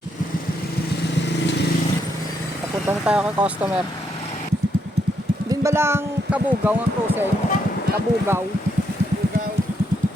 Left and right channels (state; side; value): normal; both; correlation 0.77